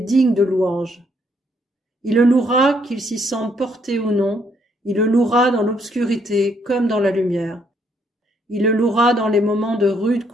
de louange. Il le louera qu'il s'y sente porté ou non, il le louera dans l'obscurité comme dans la lumière. Il le louera dans les moments de rude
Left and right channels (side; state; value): both; normal; correlation 0.71